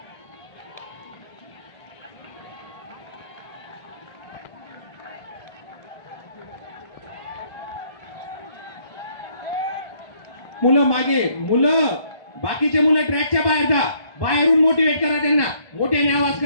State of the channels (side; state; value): right; late; 1.1 ms